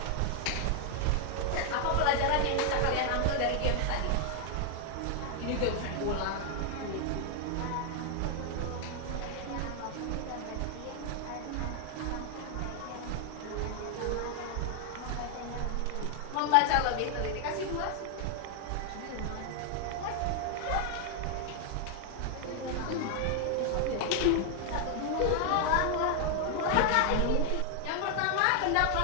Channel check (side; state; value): both; different; correlation 0.00